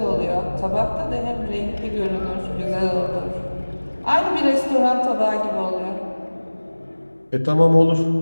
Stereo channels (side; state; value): both; inverted; correlation -1.00